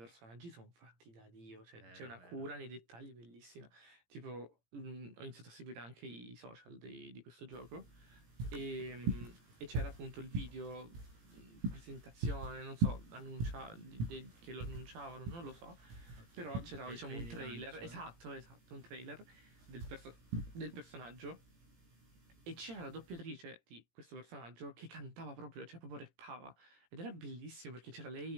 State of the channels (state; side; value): late; left; 18 ms